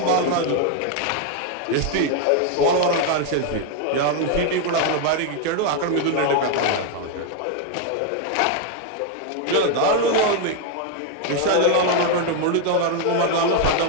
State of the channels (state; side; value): different; both; correlation 0.01